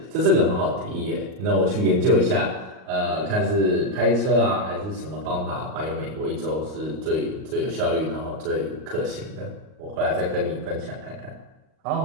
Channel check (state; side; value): late; left; 38 ms